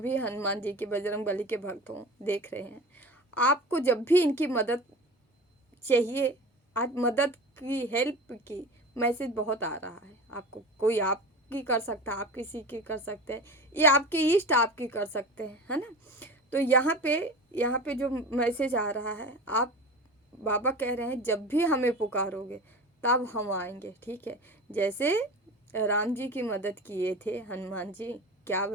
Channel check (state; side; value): normal; both; correlation 0.33